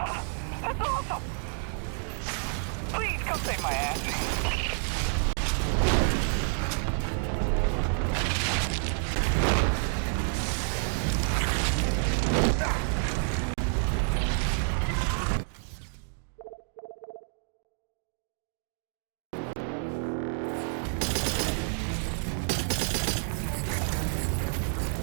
That's awesome! Please come save my ass.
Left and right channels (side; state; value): left; silent; 58 dB below the other